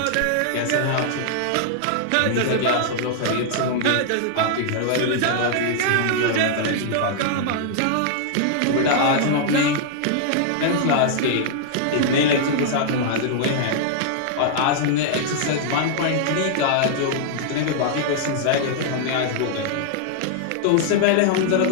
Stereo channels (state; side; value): different; both; correlation -0.01